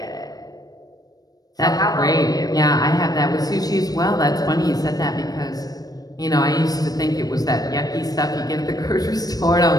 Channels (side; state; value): right; late; 0.18 ms